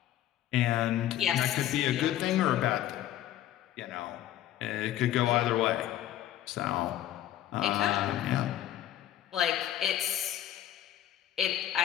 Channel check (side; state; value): right; quieter; 12.4 dB